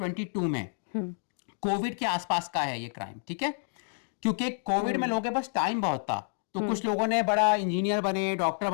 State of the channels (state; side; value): silent; right; digital silence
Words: में। कोविड के आसपास का है ये क्राइम, ठीक है। क्योंकि कोविड में लोगों के पास टाइम बहुत था, तो कुछ लोगों ने बड़ा इंजीनियर बने, डॉक्टर